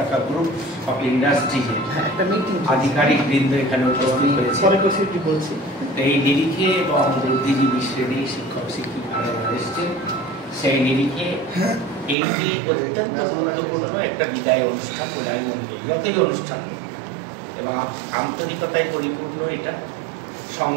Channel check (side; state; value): left; drops out; at 12.2 s